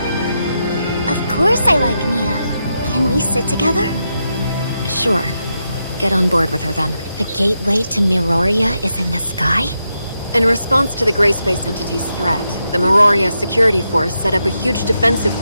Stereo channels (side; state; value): both; inverted; correlation -0.85